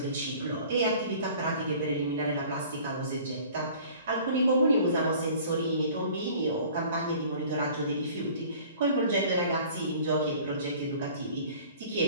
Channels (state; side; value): inverted; both; correlation -0.48